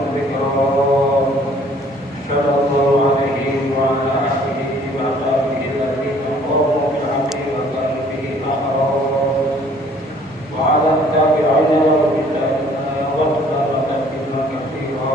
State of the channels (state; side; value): normal; both; correlation 0.57